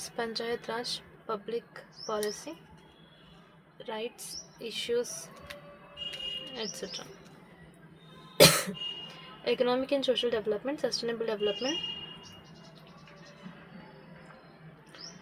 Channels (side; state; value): both; identical; correlation 1.00